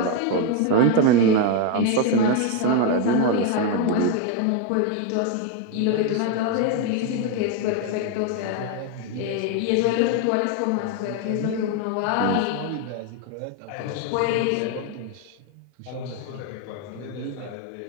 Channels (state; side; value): different; both; correlation 0.02